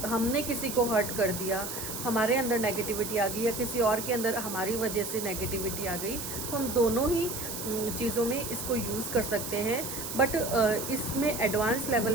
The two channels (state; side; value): noise; right; hiss, 6 dB below the sound